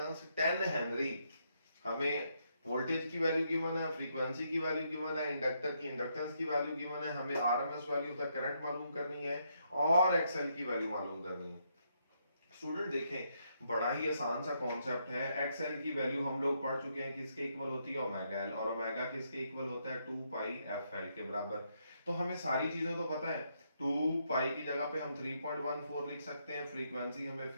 10 Henry। हमें वोल्टेज की वैल्यू गिवन है, फ्रीक्वेंसी की वैल्यू गिवन है, इंडक्टर की इंडक्टेंस की वैल्यू गिवन है, हमें RMS value of the current मालूम करनी है और एक्सएल की वैल्यू मालूम करनी है। स्टूडेंट देखें बड़ा ही आसान सा कॉन्सेप्ट है। एक्सएल की वैल्यू हम लोग पढ़ चुके हैं, किसके इक्वल होती है ओमेगा एल, और ओमेगा किसके इक्वल होता है 2 पाई एफ एल के बराबर। तो हमें सारी चीजें तो पता है। 2 पाई की जगह पे हम 3.14 लिख सकते हैं, फ्रीक्वेंसी हमें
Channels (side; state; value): both; inverted; correlation -0.77